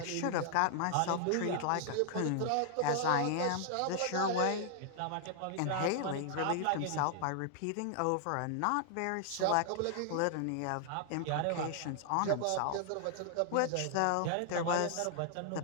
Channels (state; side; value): different; both; correlation 0.00